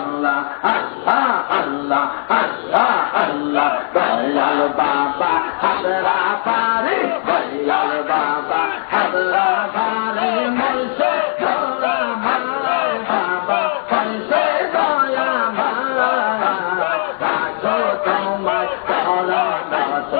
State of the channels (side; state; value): right; silent; 60 dB below the other